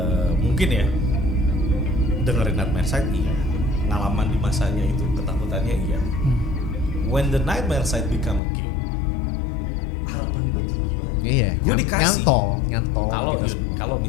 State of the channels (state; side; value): drops out; right; at 8.4 s